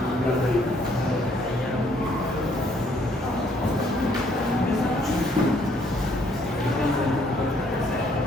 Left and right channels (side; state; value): both; normal; correlation 0.66